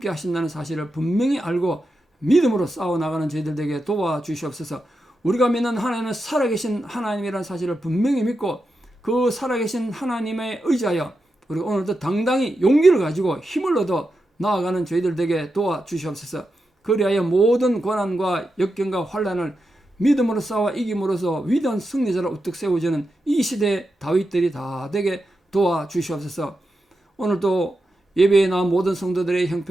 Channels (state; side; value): normal; both; correlation 0.88